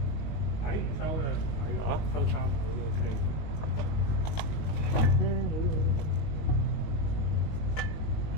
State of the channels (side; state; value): right; late; 19 ms